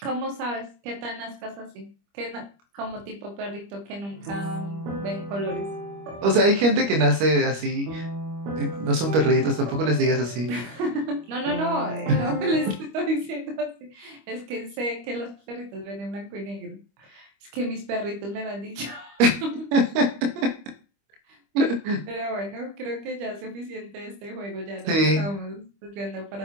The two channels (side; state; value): left; late; 25 ms